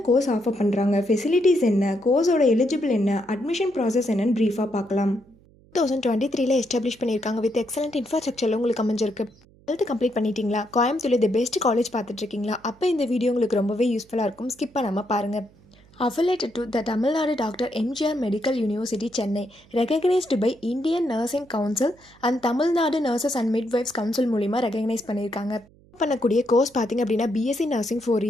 கோர்ஸ் ஆஃபர் பண்ணுறாங்க, ஃபெசிலிட்டிஸ் என்ன, கோர்ஸோட எலிஜிபிள் என்ன, அட்மிஷன் ப்ராசஸ் என்னன்னு ப்ரீஃபாக பார்க்கலாம். 2023 எஸ்டாப்ளிஷ் பண்ணியிருக்காங்க. வித் எக்ஸலண்ட் இன்ஃப்ராஸ்ட்ரக்சரில் உங்களுக்கு அமைஞ்சிருக்கு. 12th கம்ப்ளீட் பண்ணிட்டீங்களா? கோயம்புத்தூர்ல தி பெஸ்ட் காலேஜ் பார்த்துட்ருக்கீங்களா? அப்போ இந்த வீடியோ உங்களுக்கு ரொம்பவே யூஸ்ஃபுல்லாக இருக்கும். ஸ்கிப் பண்ணாமல் பாருங்கள். Affiliated to the Tamil Nadu Dr. MGR Medical University, Chennai, recognized by Indian Nursing Council and Tamil Nadu Nurses and Midwives Council மூலிமா ரெகக்னைஸ் பண்ணியிருக்காங்க. பண்ணக்கூடிய கோர்ஸ் பார்த்தீங்க அப்படின்னா பிஎஸ்சி நர்சிங் 4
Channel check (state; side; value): noise; right; hum, 28 dB below the sound